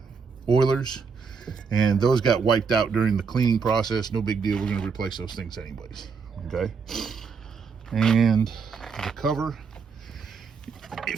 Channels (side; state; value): left; quieter; 5.5 dB